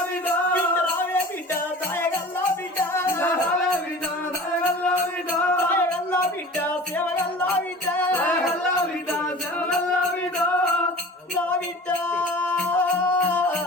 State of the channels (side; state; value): both; normal; correlation 0.40